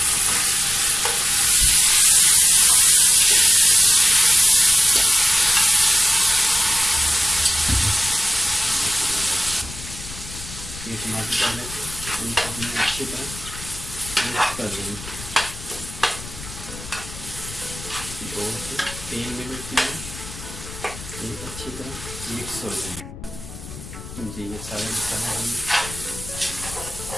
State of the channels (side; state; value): left; noise; rumble, 14 dB below the sound